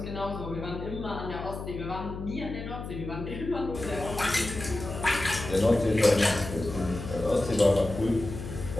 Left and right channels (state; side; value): noise; left; hum, 8 dB below the sound